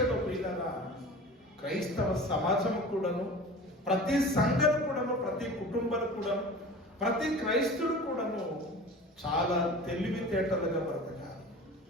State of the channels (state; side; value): normal; both; correlation 0.38